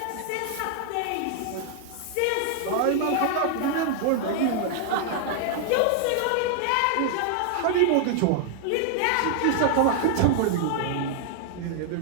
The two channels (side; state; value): both; different; correlation 0.00